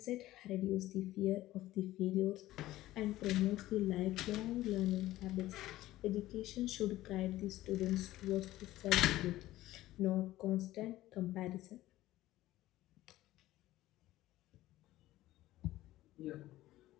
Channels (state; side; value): quieter; right; 15.8 dB